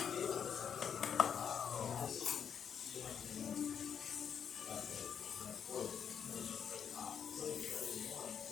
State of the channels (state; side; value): quieter; right; 7.7 dB